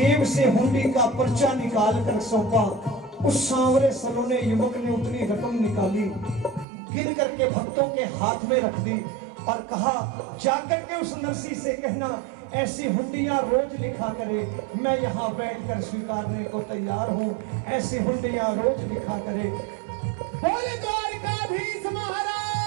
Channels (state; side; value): drops out; left; at 6.7 s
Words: से हुंडी का पर्चा निकाल कर सौंपा। उस सांवरे सलोने युवक ने उतनी रकम निकाली, गिन करके भक्तों के हाथ में रख दी और कहा, जाकर के उस नरसी से कहना, ऐसी हुंडियां रोज लिखा करे, मैं यहां बैठकर स्वीकारने को तैयार हूं, ऐसी हुंडियां रोज लिखा करे। बोले द्वारिकाधीश